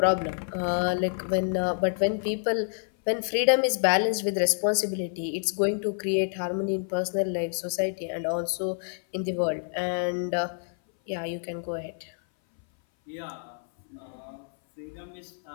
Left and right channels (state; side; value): silent; right; 58 dB below the other